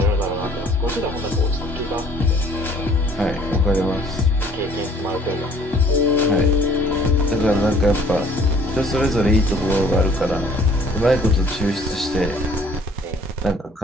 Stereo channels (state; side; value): normal; both; correlation 0.56